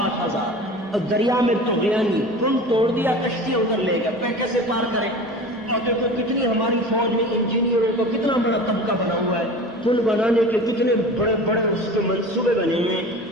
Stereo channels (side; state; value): both; normal; correlation 0.36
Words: اور دریا میں طغیانی پل توڑ دیا، کشتی ادھر لے گیا، پہ کیسے پار کرے؟ اور دیکھو کتنی ہماری فوج میں انجینئروں کا کتنا بڑا طبقہ بنا ہوا ہے، پل بنانے کے کتنے بڑے بڑے اس کے منصوبے بنے ہوئے ہیں۔